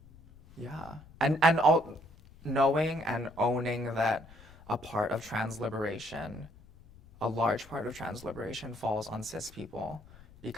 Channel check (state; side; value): noise; left; rumble, 22 dB below the sound